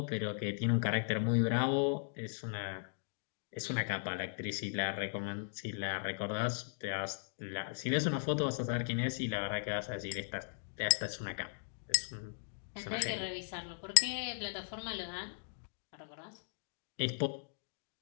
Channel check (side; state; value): right; silent; digital silence